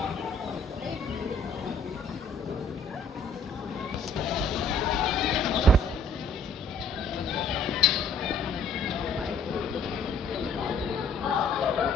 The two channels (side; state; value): right; quieter; 3.2 dB